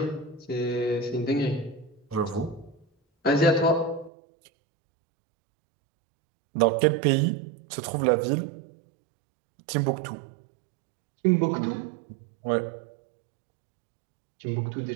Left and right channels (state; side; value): drops out; left; at 4.1 s